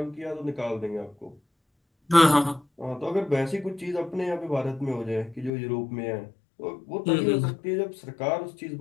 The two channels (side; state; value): right; drops out; at 5.5 s